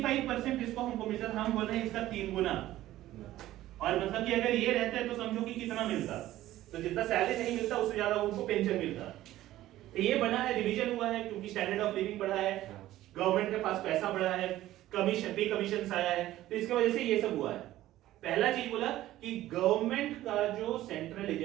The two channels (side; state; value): left; quieter; 14.8 dB